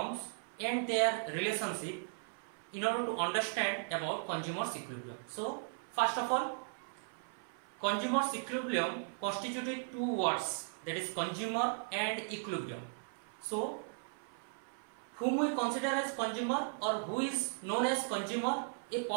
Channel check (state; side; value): silent; left; 53 dB below the other